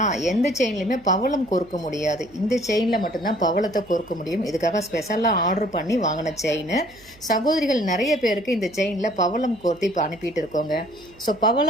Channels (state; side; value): noise; right; hum, 26 dB below the sound